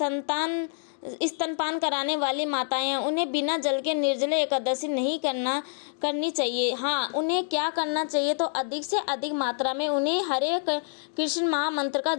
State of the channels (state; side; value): silent; right; digital silence